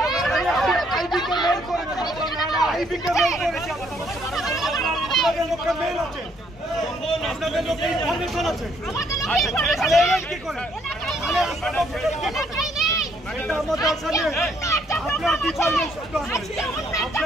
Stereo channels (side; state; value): both; normal; correlation 0.68